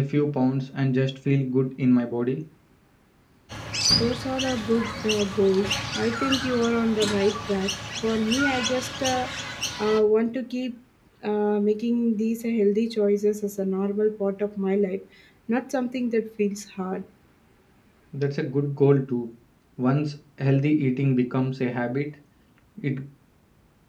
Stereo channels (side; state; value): both; identical; correlation 1.00